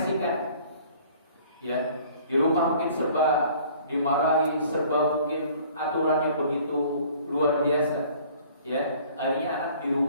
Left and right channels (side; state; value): both; inverted; correlation -0.53